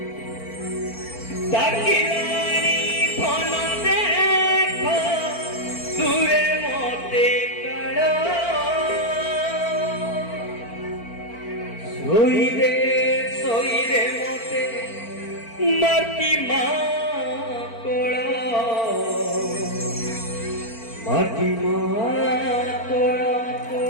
ডাকিলানি ফোন দেখ দূরে মতে কাল সইরে সইরে মতে মাটি মা কোড়া মাটি মা কোড়া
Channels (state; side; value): late; right; 4.4 ms